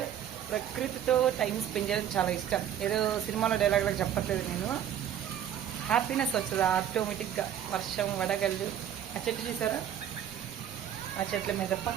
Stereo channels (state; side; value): quieter; left; 10.0 dB